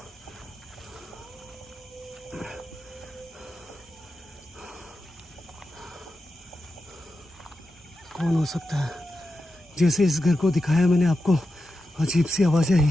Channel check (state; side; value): normal; both; correlation 0.90